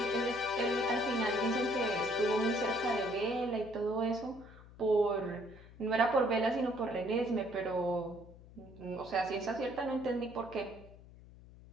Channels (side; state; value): left; noise; hum, 20 dB below the sound